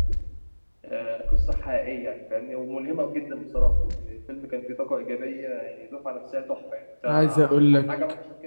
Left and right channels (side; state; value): both; inverted; correlation -1.00